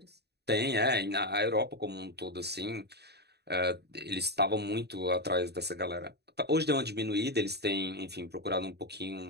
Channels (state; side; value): late; left; 0.48 ms